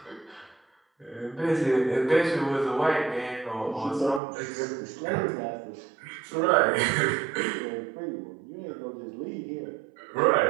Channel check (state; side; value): drops out; left; at 4.2 s